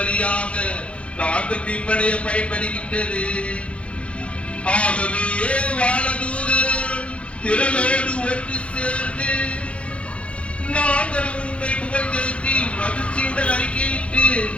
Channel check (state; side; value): late; right; 0.061 ms